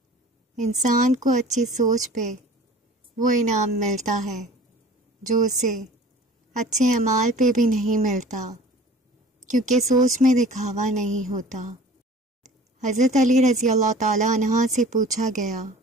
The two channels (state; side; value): normal; both; correlation 0.45